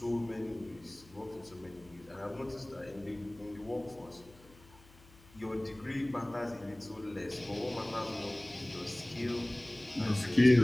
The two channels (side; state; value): left; noise; hum, 24 dB below the sound